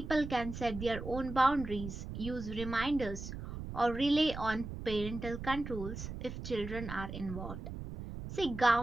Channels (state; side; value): noise; right; rumble, 8 dB below the sound